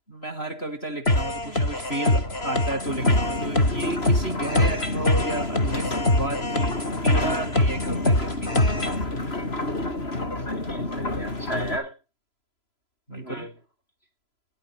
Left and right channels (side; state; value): right; late; 3.0 ms